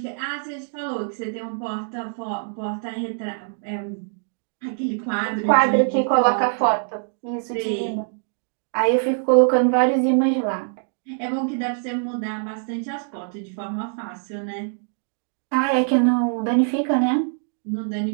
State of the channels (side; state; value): left; silent; digital silence